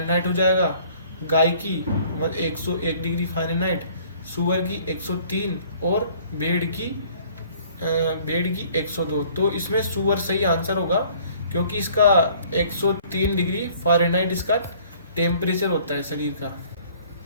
हो जाएगा, गाय की 101 डिग्री फ़ारेनहाइट, सुअर की 103 और भेड़ की 102। तो इसमें सुअर सही आंसर होगा क्योंकि इसका 103 डिग्री फ़ारेनहाइट इसका टेम्परेचर होता है शरीर का।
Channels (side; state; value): both; inverted; correlation -0.56